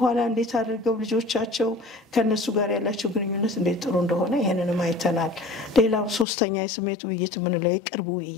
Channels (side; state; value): right; drops out; at 6.2 s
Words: እንዴት አድርገው ልጆቻቸው ከነሱ ጋር ያላቸው ግንኙነት እንዴት ጥሩ እንደሆነ ይሄንንም አይተናል። ሌላው ሶስተኛ የስሜት ውይይት ምንለው የቅርብ